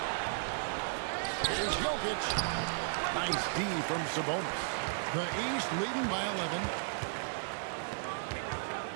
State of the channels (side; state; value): left; silent; digital silence